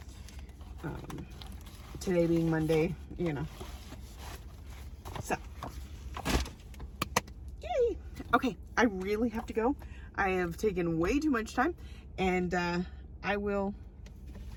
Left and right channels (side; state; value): both; identical; correlation 1.00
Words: Today being Monday, you know. So, yay! Okay, I really have to go. I have taken way too much time, and I will